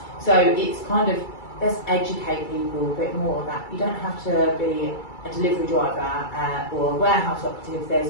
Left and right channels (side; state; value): right; late; 2.3 ms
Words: So it's kind of, let's educate people a bit more that you don't have to be a delivery driver or a warehouse operative.